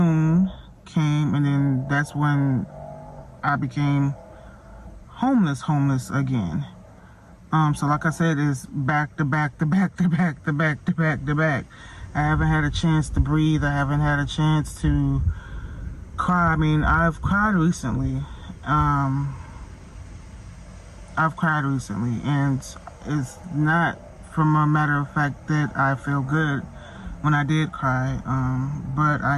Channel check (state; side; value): identical; both; correlation 1.00